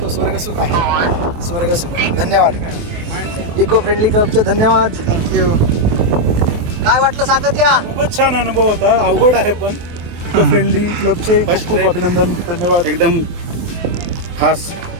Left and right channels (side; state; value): left; late; 23 ms